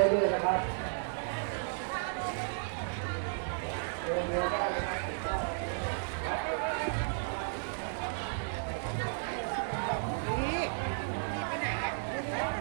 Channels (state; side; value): silent; left; 55 dB below the other